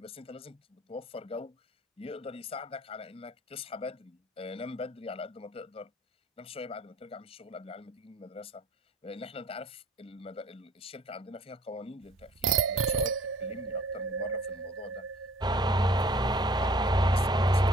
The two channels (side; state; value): both; normal; correlation 0.53